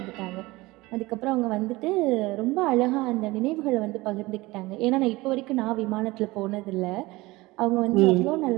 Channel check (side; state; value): left; quieter; 20.9 dB